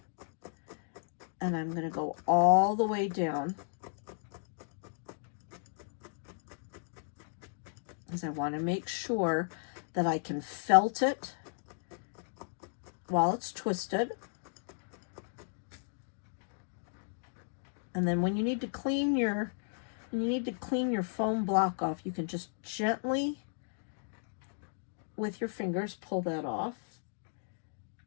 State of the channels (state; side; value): silent; right; digital silence